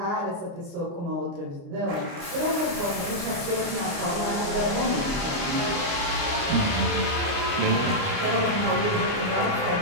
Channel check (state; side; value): late; left; 29 ms